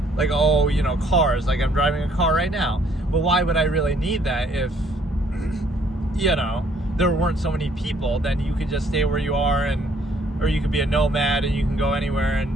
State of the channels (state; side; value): normal; both; correlation 0.64